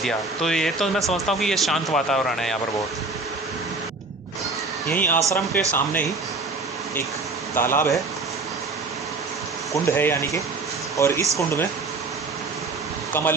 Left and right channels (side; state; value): left; quieter; 3.5 dB